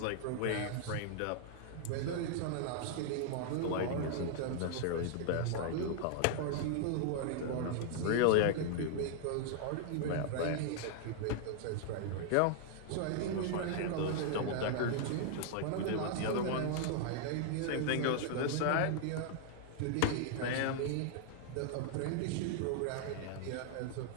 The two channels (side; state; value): both; different; correlation 0.00